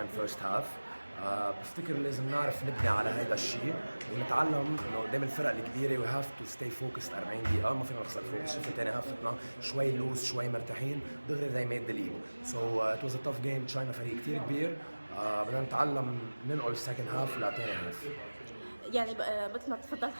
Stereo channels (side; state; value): both; inverted; correlation -1.00